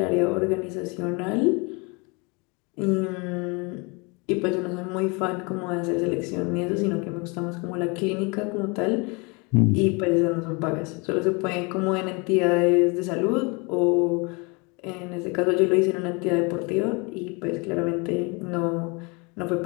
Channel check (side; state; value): right; quieter; 29.8 dB